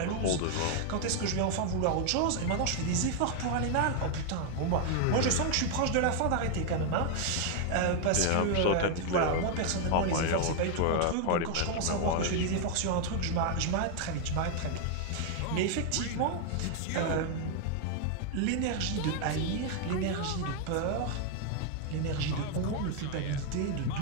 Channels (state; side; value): different; both; correlation 0.00